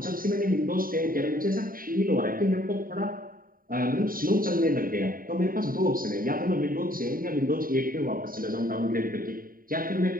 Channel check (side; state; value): left; late; 0.41 ms